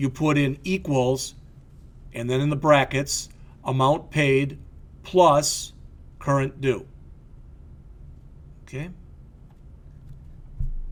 put in equals, and then in the brackets, amount paid plus current due. Okay?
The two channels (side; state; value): both; identical; correlation 1.00